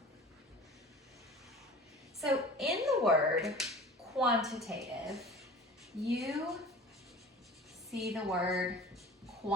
So in the word quantitative, you see the word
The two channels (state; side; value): normal; both; correlation 0.40